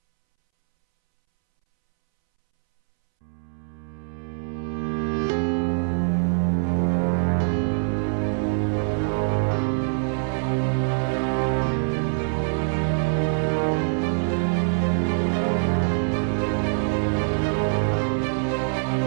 after this. Y'all hit that like and subscribe button.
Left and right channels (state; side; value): silent; left; 63 dB below the other